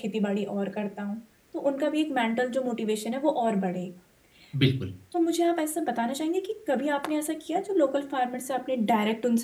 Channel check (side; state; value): both; identical; correlation 1.00